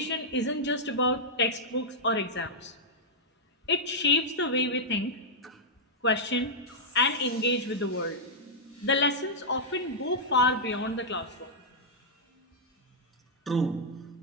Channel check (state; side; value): normal; both; correlation -0.08